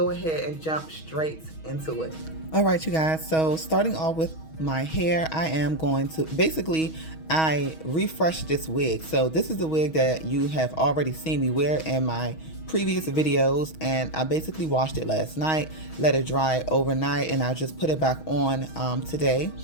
ahead and jump straight into it. All right, you guys, so starting off with my hair, I am going to, basically, I refreshed this wig. So this is the wig that you have already seen me wear in my previous videos, and I basically washed it last night, let it dry overnight, and I just put it back on today.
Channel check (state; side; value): late; right; 6.3 ms